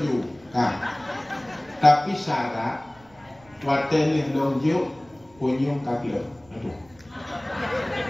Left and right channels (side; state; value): right; noise; rumble, 29 dB below the sound